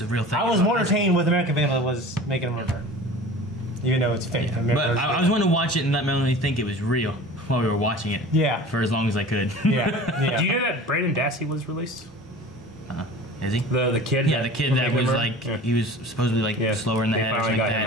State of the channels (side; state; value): both; normal; correlation 0.40